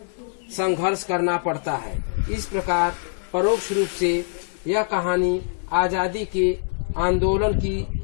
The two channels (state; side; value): silent; right; 59 dB below the other